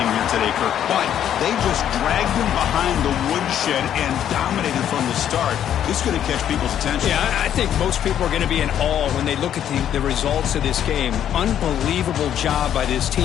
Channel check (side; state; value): right; quieter; 10.2 dB